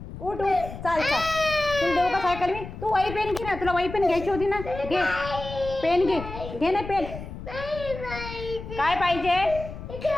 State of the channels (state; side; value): noise; left; rumble, 11 dB below the sound